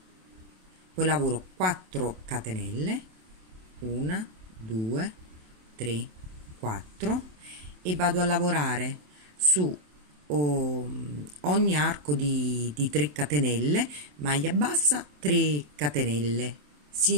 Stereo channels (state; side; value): late; left; 27 ms